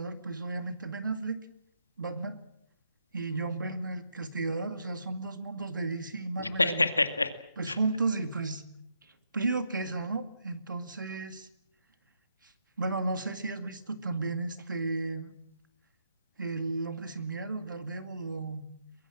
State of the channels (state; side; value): inverted; both; correlation -0.79